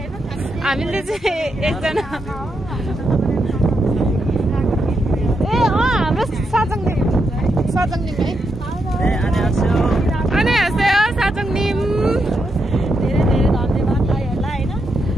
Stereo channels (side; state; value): both; normal; correlation 0.83